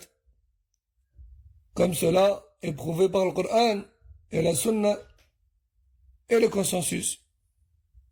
Comme cela est prouvé par le Coran et la Sunna et le consensus.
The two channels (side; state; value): both; identical; correlation 1.00